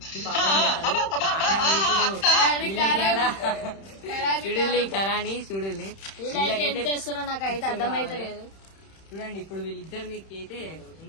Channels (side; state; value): right; late; 31 ms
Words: చూడుల్లి కరాని చూడుల్లి, నాకైతే అర్థమైతలేదు. చూడండి ఇప్పుడు వీళ్ళిద్దరు మీకు అయితే